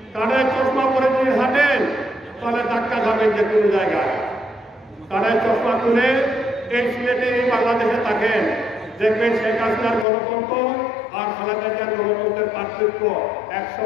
কানে চশমা পরে যদি হাঁটেন তাহলে ধাক্কা খাবেন যে কোনো জায়গায়। কানে চশমা খুলে এই সিলেটে, এই বাংলাদেশে থাকেন, দেখবেন শেখ হাসিনার গণতন্ত্র আর খালেদা জিয়ার গণতন্ত্রের পার্থক্য 100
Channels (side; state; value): right; drops out; at 10.1 s